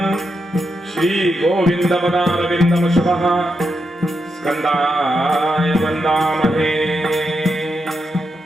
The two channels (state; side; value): normal; both; correlation 0.85